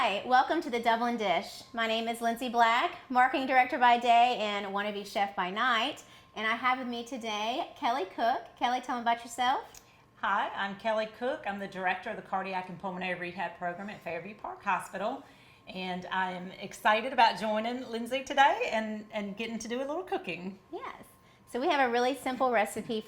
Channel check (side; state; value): both; identical; correlation 1.00